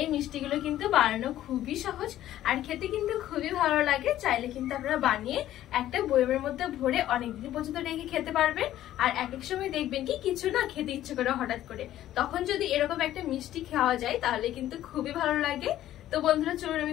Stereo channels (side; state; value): right; quieter; 13.1 dB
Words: এই মিষ্টিগুলো কিন্তু বানানো খুবই সহজ আর খেতে কিন্তু খুবই ভালো লাগে। চাইলে কিন্তু আপনারা বানিয়ে একটা বয়মের মধ্যে ভরে অনেকদিন পর্যন্ত রেখে খেতে পারবেন। আর এক এক সময় দেখবেন কি কিছু না খেতে ইচ্ছে করে হঠাৎ করে, তখন যদি এরকম একটা মিষ্টি খাওয়া যায় তাহলে কিন্তু খুবই ভালো লাগে। তো বন্ধুরা চলুন